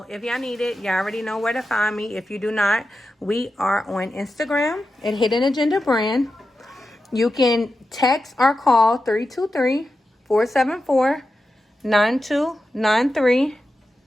if y'all need it, y'all already know where to find me. If you do not, we are on Instagram at Hidden Agenda Brand. You can text or call 323-474-9293.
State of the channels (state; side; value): normal; both; correlation 0.91